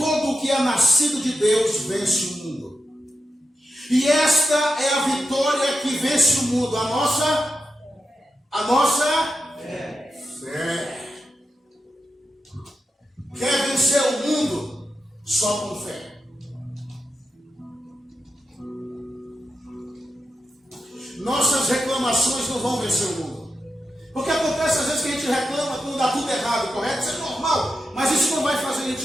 o que é nascido de Deus vence o mundo. E esta é a vitória que vence o mundo, a nossa fé. Quer vencer o mundo? Só com fé. Nossas reclamações não vão vencer o mundo. Porque acontece às vezes que a gente reclama quando dá tudo errado, correto? Isso é normal, mas isso não vai fazer a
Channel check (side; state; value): both; normal; correlation 0.88